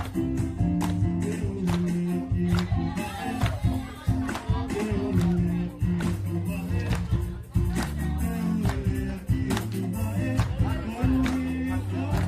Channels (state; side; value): identical; both; correlation 1.00